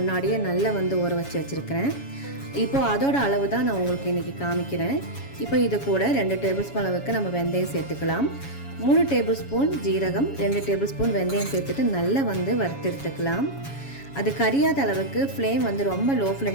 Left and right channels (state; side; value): late; right; 7.2 ms